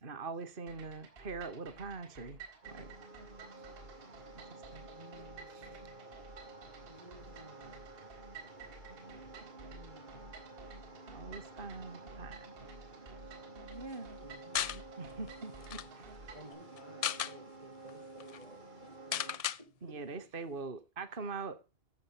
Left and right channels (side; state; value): left; late; 1.7 ms